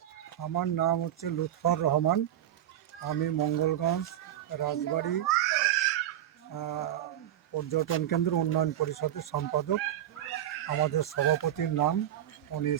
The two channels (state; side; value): quieter; left; 11.7 dB